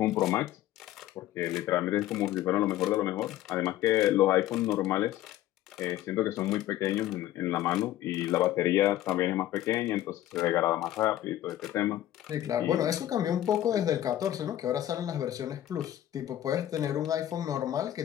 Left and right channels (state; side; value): quieter; right; 13.3 dB